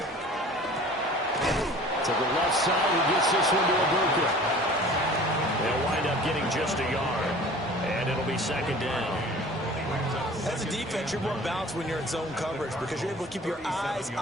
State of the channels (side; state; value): both; normal; correlation 0.45